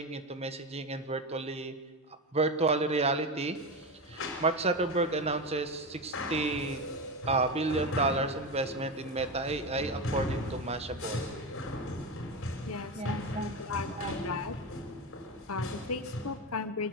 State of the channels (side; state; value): both; normal; correlation 0.18